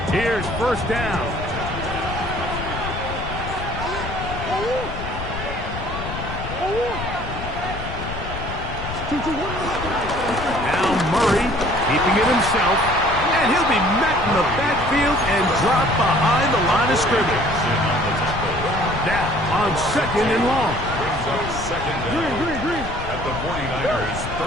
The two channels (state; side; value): noise; left; rumble, 8 dB below the sound